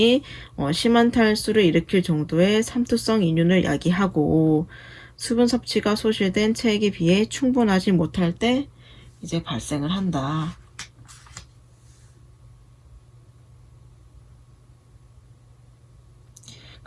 심한 탈수를 일으킬 정도의 삼투성 인륜을 야기하고, 수분 섭취가 소실된 체액에 비해 충분하지 못할 때 이제 발생을 한다.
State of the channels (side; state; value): both; identical; correlation 1.00